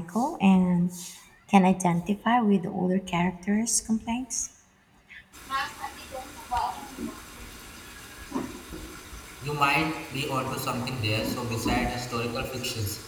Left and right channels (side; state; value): both; identical; correlation 1.00